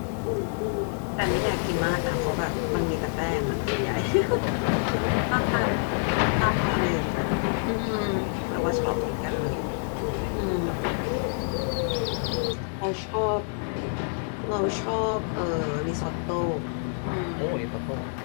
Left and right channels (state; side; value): silent; right; 60 dB below the other